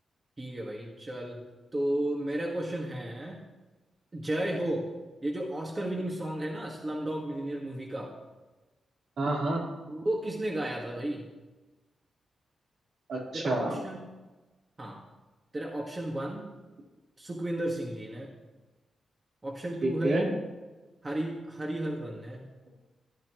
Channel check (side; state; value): both; normal; correlation 0.91